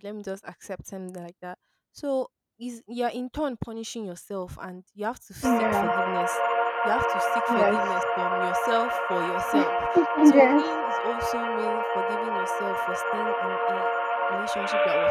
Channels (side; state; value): both; identical; correlation 1.00